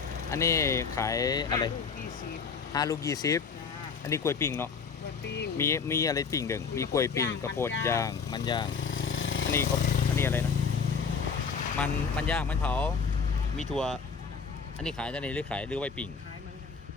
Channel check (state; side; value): quieter; right; 5.6 dB